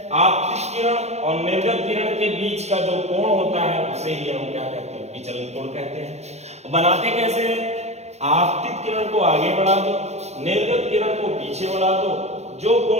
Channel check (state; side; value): late; left; 0.32 ms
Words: आपतित किरण और निर्गत किरण के बीच का जो कोण होता है उसे ही हम क्या कहते हैं, विचलन कोण कहते हैं। बनाते कैसे हैं, आपतित किरण को आगे बढ़ा दो, निर्गत किरण को पीछे बढ़ा दो, जो